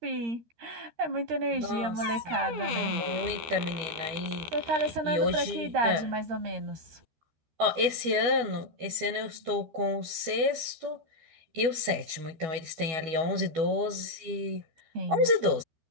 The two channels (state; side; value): late; left; 12 ms